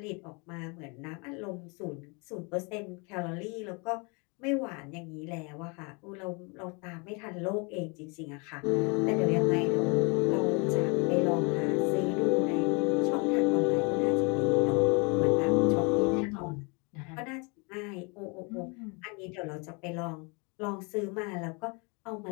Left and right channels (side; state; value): right; quieter; 31.6 dB